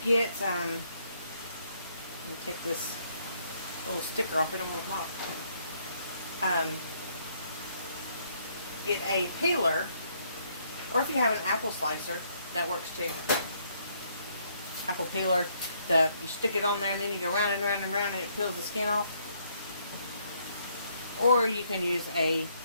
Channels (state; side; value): inverted; both; correlation -0.70